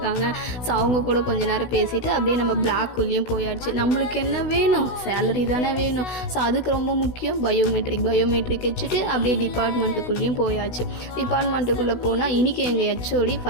ஸோ அவங்க கூட கொஞ்ச நேரம் பேசிவிட்டு அப்படியே நம்ம பிளாக்குள்ளேயும் போயாச்சு. நம்மளுக்கு என்ன வேணும்? சேலரி தானே வேணும். ஸோ அதுக்கு ரொம்ப முக்கியம் பயோமெட்ரிக் வச்சுட்டு அப்படியே டிபார்ட்மெண்ட்டுக்குள்ளேயும் போயாச்சு. டிபார்ட்மெண்ட்டுக்குள்ளே போனால் இன்றைக்கி எங்கள் ஹெச்ஓடி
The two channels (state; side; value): late; right; 16 ms